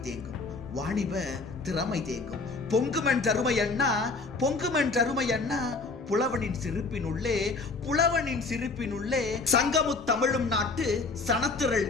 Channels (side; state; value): right; quieter; 3.9 dB